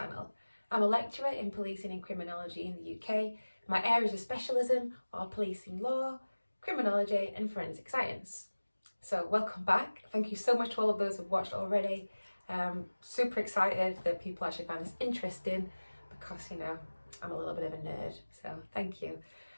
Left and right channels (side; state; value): both; inverted; correlation -1.00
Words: I'm a lecturer in policing and criminology in the UK. My areas of specialism are policing law, criminology and forensic science. So welcome back. Thank you so much to all of those who've watched already. Super excited that people actually find this interesting because, you know, I'm a little bit of a nerd, so thank you.